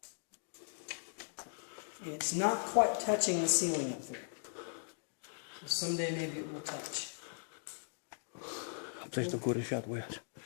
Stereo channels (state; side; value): silent; right; digital silence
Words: And it's not quite touching the ceiling up there. So someday maybe it will touch.